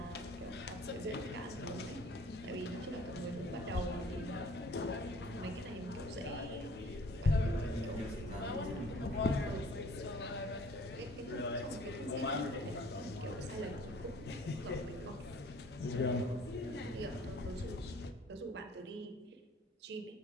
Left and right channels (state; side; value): normal; both; correlation 0.53